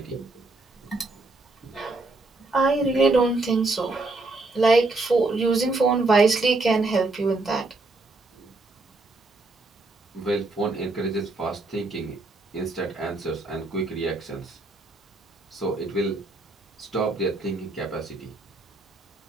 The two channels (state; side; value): quieter; left; 3.2 dB